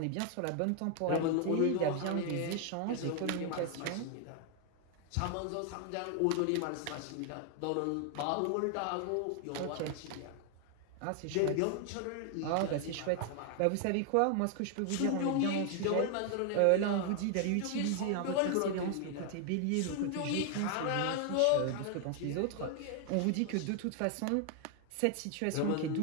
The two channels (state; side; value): different; both; correlation 0.00